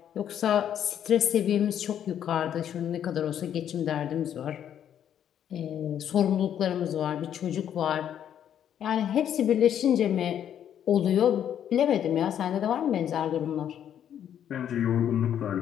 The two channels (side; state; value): right; quieter; 9.7 dB